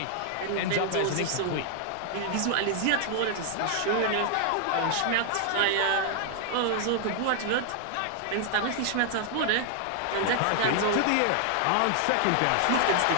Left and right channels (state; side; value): different; both; correlation 0.00